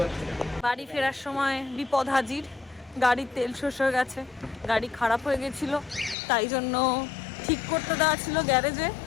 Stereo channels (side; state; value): right; drops out; at 6.2 s